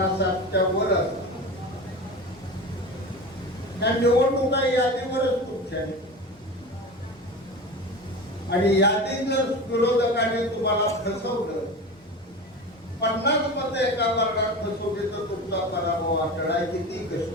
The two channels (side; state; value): both; normal; correlation 0.29